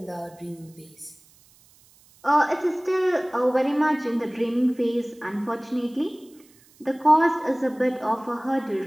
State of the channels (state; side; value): noise; right; hiss, 29 dB below the sound